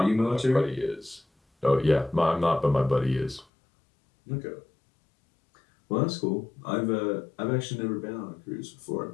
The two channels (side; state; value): right; drops out; at 3.5 s